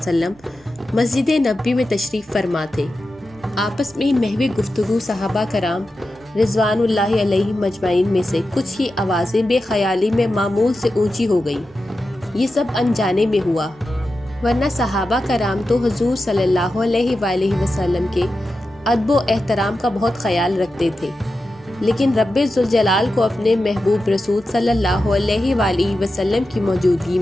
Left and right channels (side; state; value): both; normal; correlation 0.91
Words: مسجد نبوی میں تشریف فرما تھے۔ آپس میں محو گفتگو صحابہ کرام رضوان اللہ علیہ مجمعین میں سے کچھ کی آوازیں بے خیالی میں معمول سے اونچی ہو گئیں۔ یہ سب انجانے میں ہوا، ورنہ صحابہ کرام تو حضور صلی اللہ علیہ وآلہ وسلم کے ادب و احترام کا بہت خیال رکھتے تھے، لیکن رب ذوالجلال کو اپنے محبوب رسول صلی اللہ علیہ وآلہ وسلم کی موجودگی